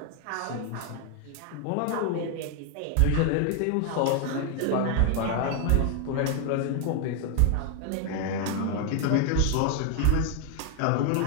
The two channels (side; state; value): both; different; correlation 0.01